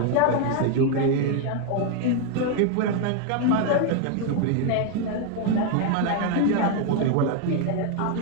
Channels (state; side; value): different; both; correlation 0.01